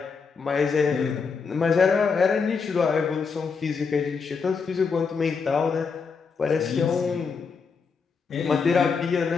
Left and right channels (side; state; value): right; quieter; 5.3 dB